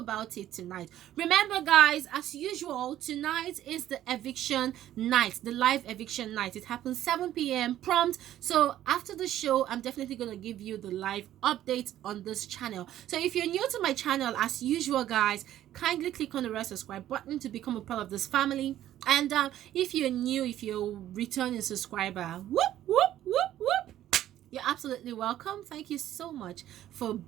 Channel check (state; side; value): quieter; left; 12.6 dB